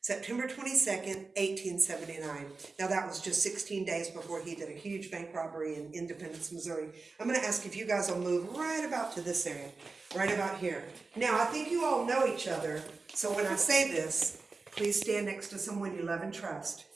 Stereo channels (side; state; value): left; quieter; 4.0 dB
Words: 22nd, 1879. Now that was just 16 days before he did a huge bank robbery in Independence, Missouri. I'm going to ask if you guys will move right about to this area, right about here. Now I think you all know each other, so when I say this, please stand next to someone you love and trust,